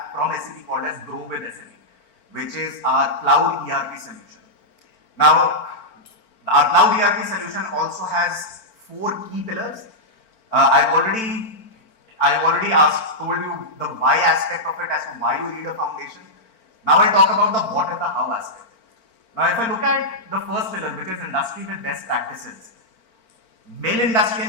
from SAP called as Grow with SAP, which is our cloud ERP solution. Now, our cloud ERP solution also has 4 key pillars. I've already told you the why aspect of it as to why you need a foundation. Now I'll talk about the what and the how aspect. Now if I look at the first pillar, which is industry with best practices, mill industry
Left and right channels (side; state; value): right; late; 4.4 ms